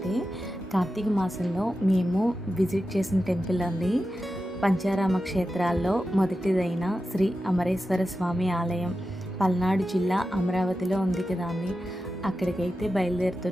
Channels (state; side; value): normal; both; correlation 0.91